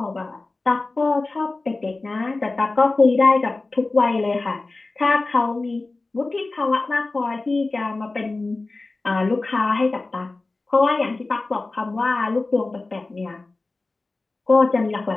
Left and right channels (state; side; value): quieter; right; 3.3 dB